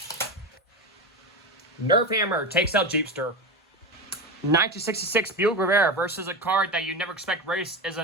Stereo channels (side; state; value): both; normal; correlation 0.20